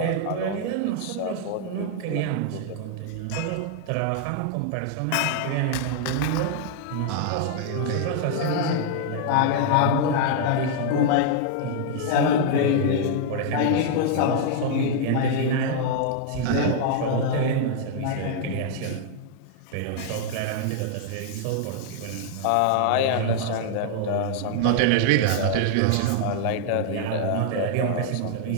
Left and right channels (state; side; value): different; both; correlation -0.01